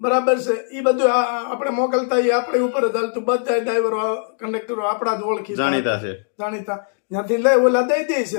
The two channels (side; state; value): right; silent; digital silence